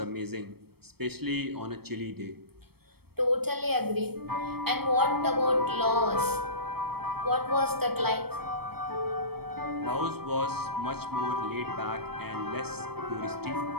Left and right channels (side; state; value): left; late; 0.96 ms